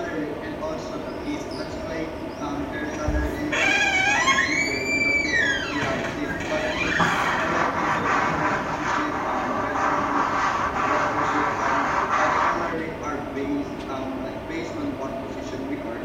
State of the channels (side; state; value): both; identical; correlation 1.00